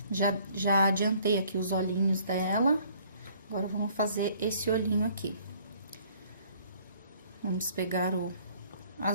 Já adiantei aqui os olhinhos dela. Agora, vamos fazer esse olhinho aqui. Vamos pegar o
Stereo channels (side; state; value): both; inverted; correlation -0.58